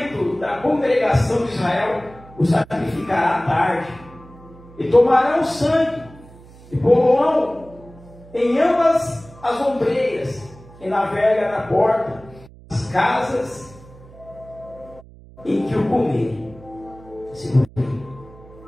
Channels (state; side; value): noise; right; hum, 21 dB below the sound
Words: da congregação de Israel o sacrificará à tarde, e tomarão o sangue, e pô-lo em ambas as ombreiras, e na verga da porta, as casas em que o comerem.